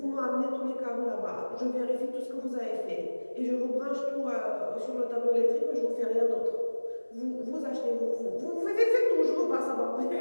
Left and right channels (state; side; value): inverted; both; correlation -1.00